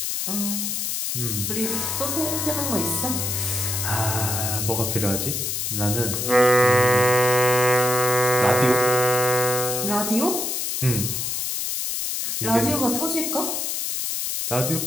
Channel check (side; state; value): left; noise; hiss, 2 dB below the sound